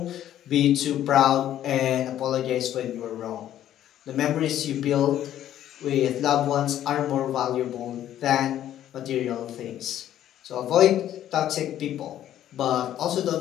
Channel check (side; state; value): right; quieter; 11.7 dB